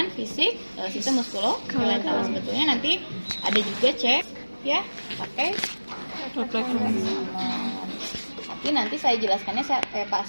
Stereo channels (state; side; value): inverted; both; correlation -1.00